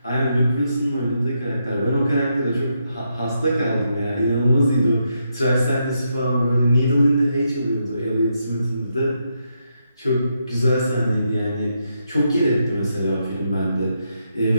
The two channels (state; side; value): inverted; both; correlation -0.81